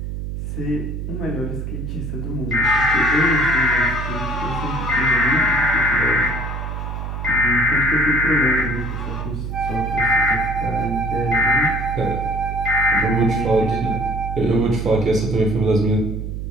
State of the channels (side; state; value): right; noise; hum, 5 dB below the sound